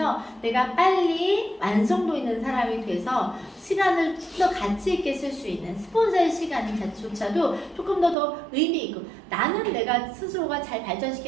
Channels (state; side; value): drops out; left; at 8.2 s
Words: 내가 빨리 완성도 있는 사람이 돼서 시간을 좀 더 가치 있게 쓸 수 있는 스폰서의 시간조차도 조금 더 의미 있고 나는 내가 스스로가 잘